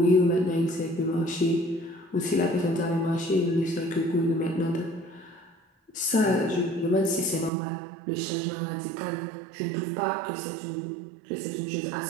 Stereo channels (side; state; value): left; drops out; at 7.5 s